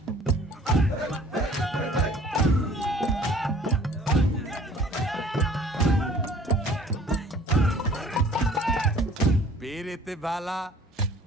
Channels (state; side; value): normal; both; correlation 0.51